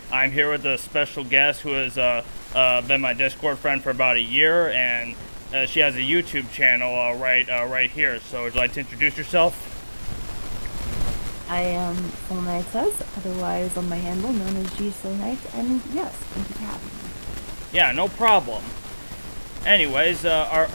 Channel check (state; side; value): inverted; both; correlation -1.00